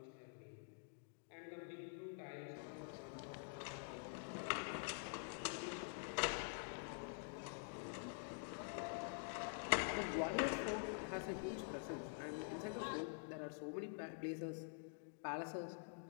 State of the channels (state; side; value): silent; right; digital silence